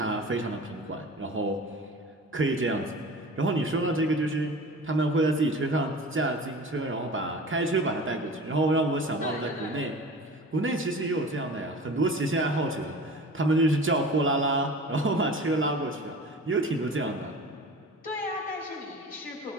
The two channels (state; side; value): normal; both; correlation 0.38